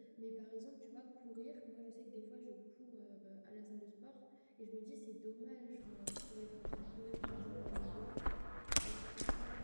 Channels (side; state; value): both; inverted; correlation -1.00